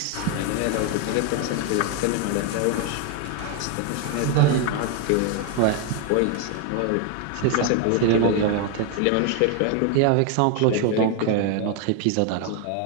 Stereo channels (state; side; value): different; both; correlation 0.01